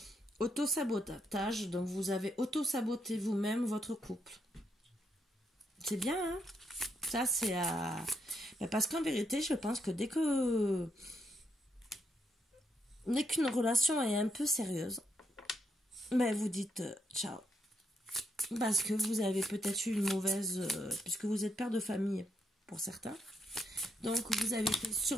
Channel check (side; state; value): both; normal; correlation 0.78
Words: Auto-sabotage, donc vous avez auto-saboté vous-même votre couple. C'est bien, hein? Ça, c'est à... Parce qu'en vérité, je pense que dès qu'une relation est un peu sérieuse, vous dites ciao. Parce que vous avez peut-être eu une mauvaise... puisque vous êtes père de famille, pour certains. Donc, vous avez fait